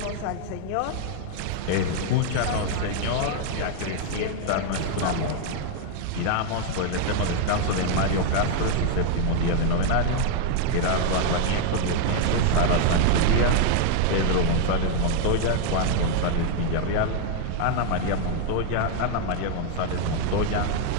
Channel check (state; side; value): different; both; correlation 0.00